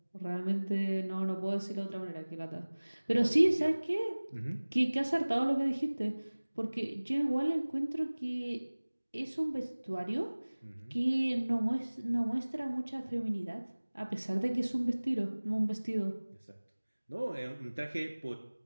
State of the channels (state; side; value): inverted; both; correlation -1.00